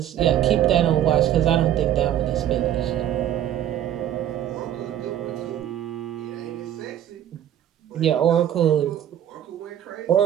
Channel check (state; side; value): quieter; left; 11.0 dB